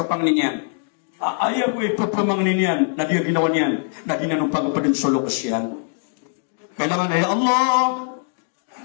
panglinyan. Ayaw ko ipapamangnin yan na di ginawa niyan na di na nung pagpapadang solo kasyan. Kailangan, ya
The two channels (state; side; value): silent; right; 60 dB below the other